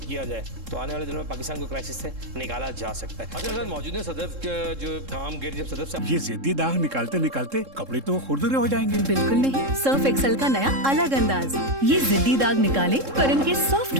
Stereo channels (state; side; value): late; left; 3.7 ms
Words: किया जाए तो आने वाले दिनों में पाकिस्तान को क्राइसिस से निकाला जा सकता है। अच्छा सर, मौजूद है सदफ का जो काम गिर जब सदफ से ये जिद्दी दाग निकालते निकालते कपड़े तो खुरदुरे हो जाएंगे। बिल्कुल नहीं, सर्फ एक्सेल का नया अलग अंदाज। ये जिद्दी दाग निकाले पर इनके सॉफ्ट